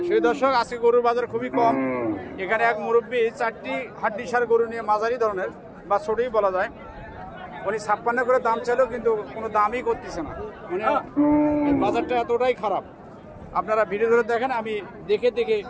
সেই দর্শক আজকে গরুর বাজার খুবই কম। এখানে এক মুরব্বী 4টি হাড্ডিসার গরু নিয়ে মাঝারি ধরনের বা ছোটই বলা যায়, উনি 56 করে দাম চাইলেও কিন্তু কোনো দামই করতেছে না। মানে বাজারটা এতটাই খারাপ। আপনারা ভিডিও ধরে দেখেন, আমি দেখে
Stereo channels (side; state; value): both; identical; correlation 1.00